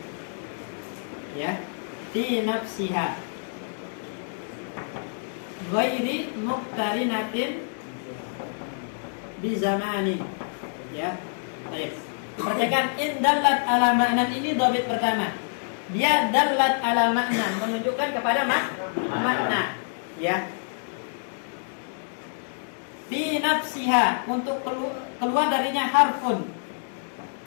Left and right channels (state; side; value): silent; right; digital silence